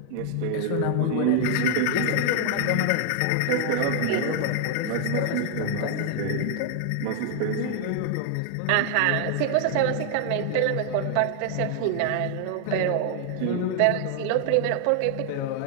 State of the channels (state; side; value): different; both; correlation 0.00